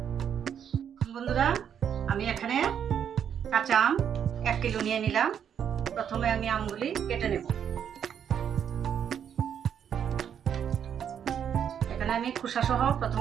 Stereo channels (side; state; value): left; quieter; 8.5 dB